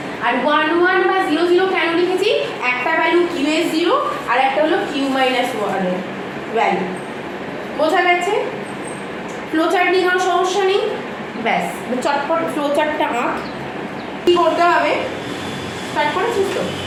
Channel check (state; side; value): identical; both; correlation 1.00